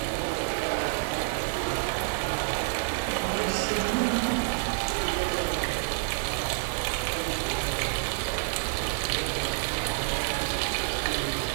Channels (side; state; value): left; silent; digital silence